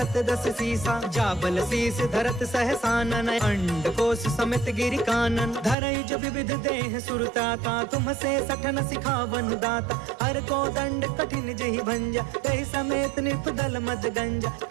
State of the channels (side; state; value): left; drops out; at 5.8 s